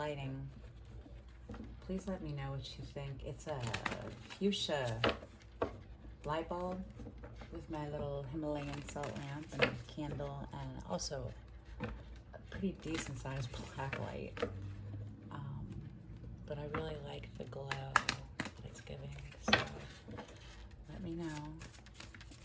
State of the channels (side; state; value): both; identical; correlation 1.00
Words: Please let me know what you think. It's a fuchsia light bulb with my little Himalayan salt lamp and a candle, and also a pretty decent sized black light. But I really like the glow that it's giving, so let me know.